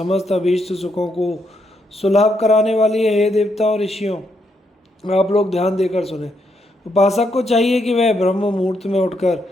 अभीष्ट सुखों को सुलभ कराने वाली है। हे देवताओं ऋषियों, आप लोग ध्यान देकर सुने। उपासक को चाहिए कि वह ब्रह्म मुहूर्त में उठकर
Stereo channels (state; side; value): normal; both; correlation 0.77